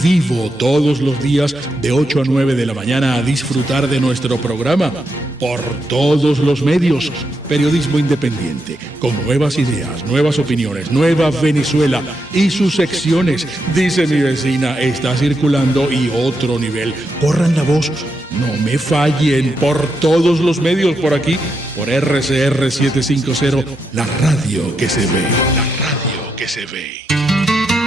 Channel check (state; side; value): normal; both; correlation 0.83